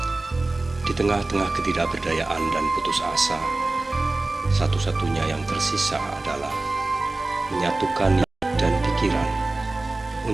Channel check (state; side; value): quieter; left; 3.1 dB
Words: Di tengah-tengah ketidakberdayaan dan putus asa, satu-satunya yang tersisa adalah menyatukan niat dan pikiran